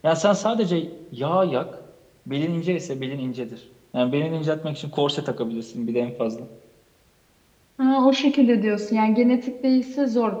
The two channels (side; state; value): both; identical; correlation 1.00